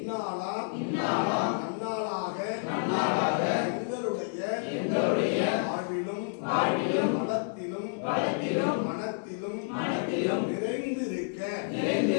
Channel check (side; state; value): right; silent; digital silence